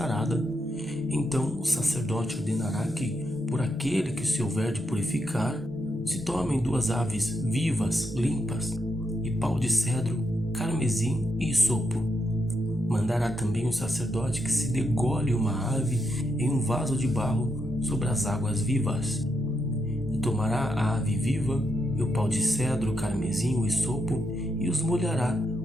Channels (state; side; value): normal; both; correlation 0.82